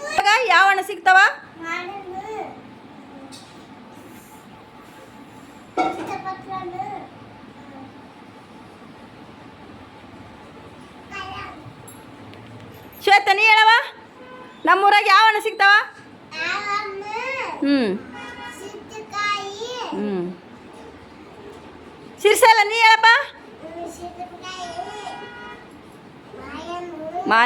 ಯಾವ ಹಣ್ಣು ಸಿಗ್ತಾವ? ಶ್ವೇತ ನೀ ಹೇಳವ, ನಮ್ಮೂರಾಗ ಯಾವ ಹಣ್ಣು ಸಿಗ್ತಾವ? ಸಿರ್ಸಲ್ಲ ನೀ ಹೇಳಪ್ಪ.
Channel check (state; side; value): identical; both; correlation 1.00